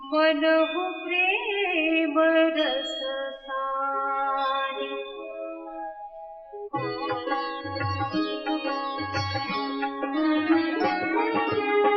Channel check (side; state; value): both; identical; correlation 1.00